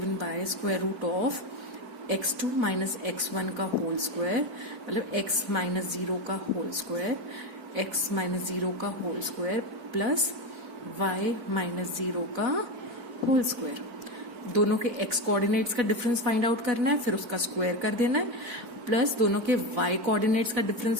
by square root of x2 minus x1 का होल स्क्वायर, मतलब x माइनस 0 का होल स्क्वायर, x माइनस 0 का whole square plus y minus 0 का होल स्क्वायर. दोनों के x coordinates का difference find out करना है, फिर उसका स्क्वायर कर देना है, प्लस दोनों के y कोऑर्डिनेट्स का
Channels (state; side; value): late; left; 4.5 ms